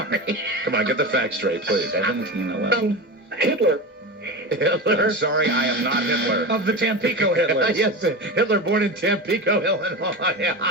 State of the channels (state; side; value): normal; both; correlation 0.25